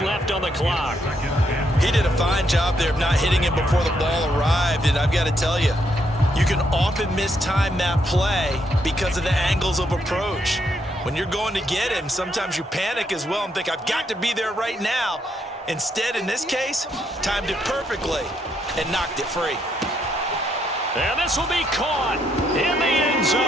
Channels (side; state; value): both; normal; correlation 0.76